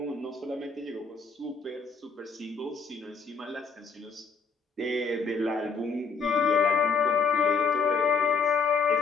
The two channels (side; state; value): right; quieter; 5.1 dB